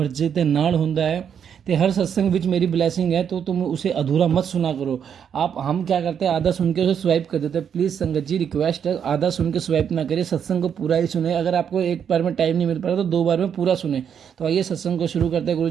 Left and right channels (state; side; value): quieter; left; 8.0 dB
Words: ते नाल हुंदा है ते हर सत्संग विच मेरी ब्लैसिंग है, तो तुम उसे अधूरा मत सुना करो। आप हम क्या करते हैं, आधा सुन के उसे स्वाइप कर देते हैं। प्लीज़ संगत जी, रिक्वेस्ट है, आधा सुन के स्वाइप ना करिए, सत्संग को पूरा ही सुने। अगर आपको एक बार में टाइम नहीं मिल पा रहा तो 2 बार में पूरा सुने। तो आइए सत्संग को शुरू करते हैं गुरु